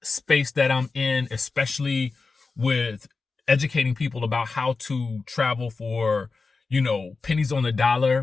space that I'm in, especially with educating people about how to travel for, pennies on the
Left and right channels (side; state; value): right; quieter; 4.2 dB